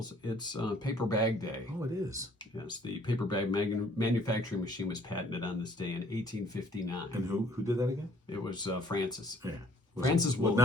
it's Paper Bag Day. Oh, it is. Yes, the paper bag manufacturing machine was patented on this day in 1859. And who did that again? It was Francis. Yeah. Francis Woolley.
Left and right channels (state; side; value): normal; both; correlation 0.59